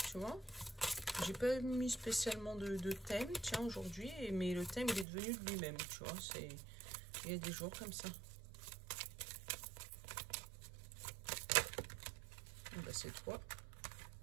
tu vois. J'ai pas mis spécialement de thème, tiens, aujourd'hui. Mais le thème, il est devenu de lui-même, tu vois. Il y a des jours comme ça. Bah, c'est toi.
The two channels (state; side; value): drops out; left; at 5.1 s